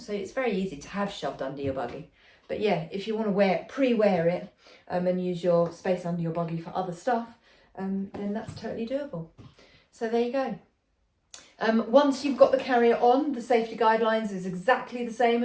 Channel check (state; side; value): identical; both; correlation 1.00